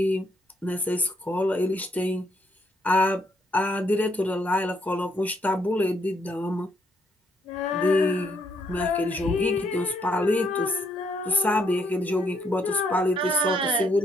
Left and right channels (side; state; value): both; normal; correlation 0.72